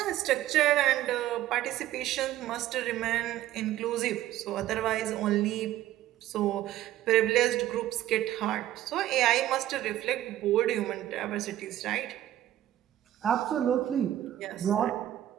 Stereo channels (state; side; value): quieter; left; 13.4 dB